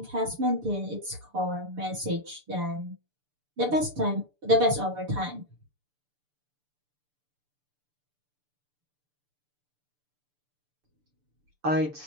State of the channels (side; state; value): left; late; 6.8 ms